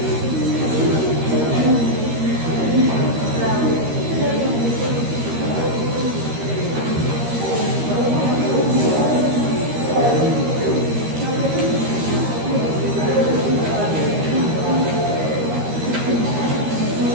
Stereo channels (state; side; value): late; left; 13 ms